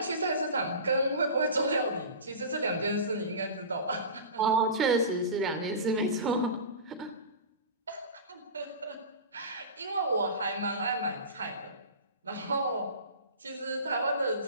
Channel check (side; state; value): both; inverted; correlation -0.31